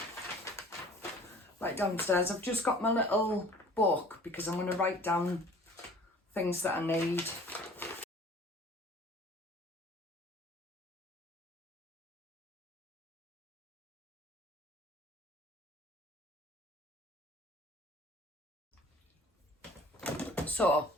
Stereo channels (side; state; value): both; normal; correlation 0.48